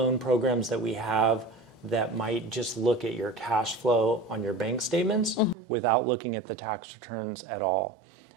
programs that we have that might just look at your cash flow on your bank statements without looking at the tax returns at all.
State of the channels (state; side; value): drops out; left; at 5.6 s